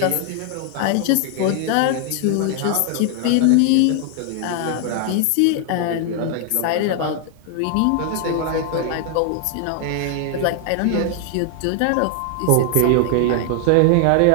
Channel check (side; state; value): both; different; correlation 0.00